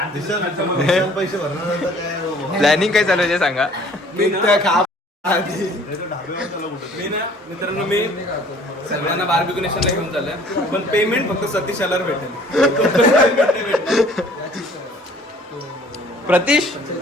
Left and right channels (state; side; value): normal; both; correlation 0.54